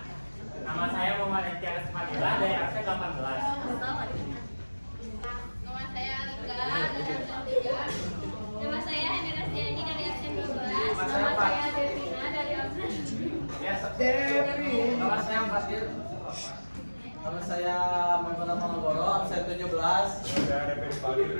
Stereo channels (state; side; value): inverted; both; correlation -1.00